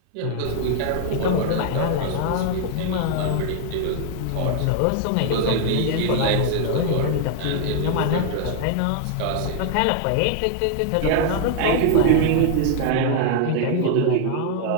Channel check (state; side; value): different; both; correlation 0.00